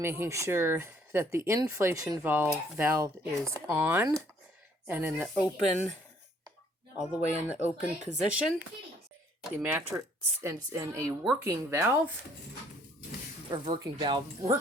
sure that the inflation valve is on and in the open, all the way in the open position. The mattress is in a working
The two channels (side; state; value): both; normal; correlation 0.62